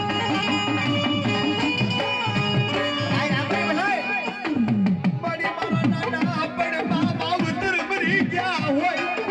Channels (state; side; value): identical; both; correlation 1.00